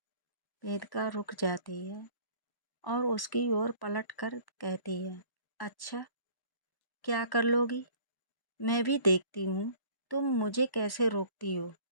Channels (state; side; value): late; right; 1.1 ms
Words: वेदिका रुक जाती है और उसकी ओर पलट कर कहती है, अच्छा क्या कर लोगी? मैं भी देखती हूँ तुम मुझे कैसे रोकती हो।